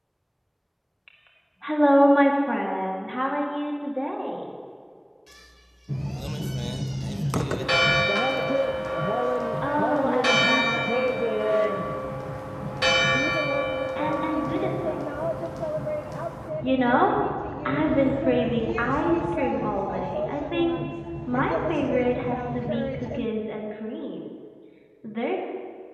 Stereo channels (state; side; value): identical; both; correlation 1.00